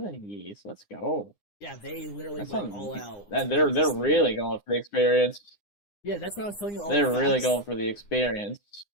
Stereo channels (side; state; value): right; late; 9.8 ms